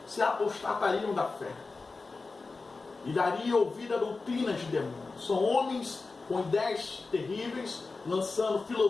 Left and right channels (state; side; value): quieter; right; 3.9 dB